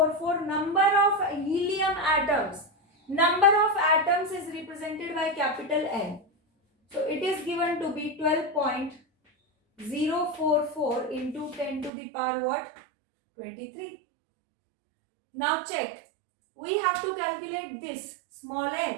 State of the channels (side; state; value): left; drops out; at 11.9 s